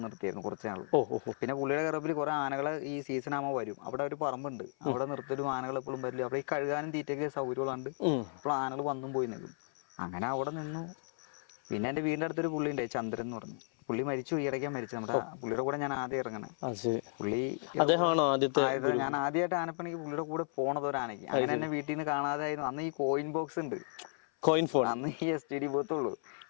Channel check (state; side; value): silent; right; 55 dB below the other